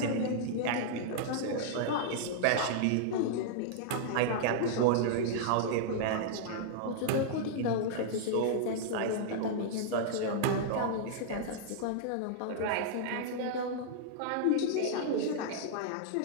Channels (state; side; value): different; both; correlation -0.01